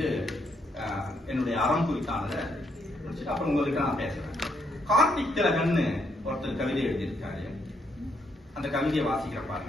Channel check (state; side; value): normal; both; correlation 0.75